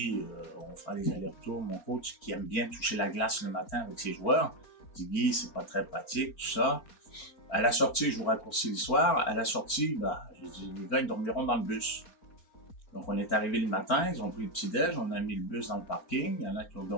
on fera les allers-retours. Mon coach, qui aime bien toucher la glace le matin avec ses joueurs, dit Guy, c'est pas très pratique, tout ça. À la sortie, je vous raccourcis l'histoire. À la sortie, j'ai dit, les gars, ils dormiront dans le bus. Donc, on est arrivé le matin, ils ont pris le petit-déj, on a mis le bus dans le parking. Il y en a qui ont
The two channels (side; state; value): right; late; 4.4 ms